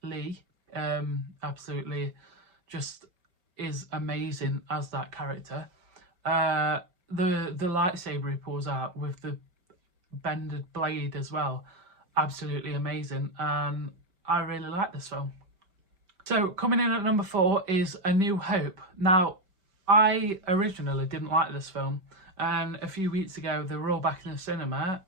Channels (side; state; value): left; late; 5.1 ms